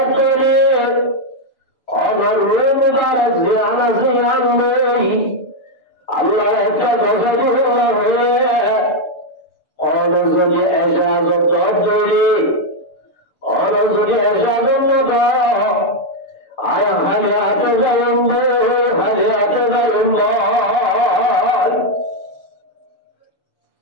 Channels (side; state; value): right; late; 6.9 ms